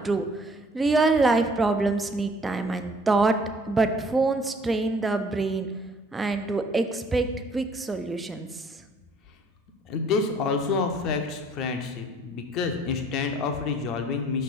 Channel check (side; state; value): both; normal; correlation 0.57